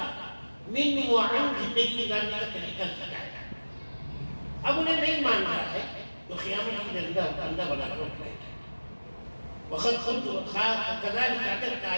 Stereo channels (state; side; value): inverted; both; correlation -1.00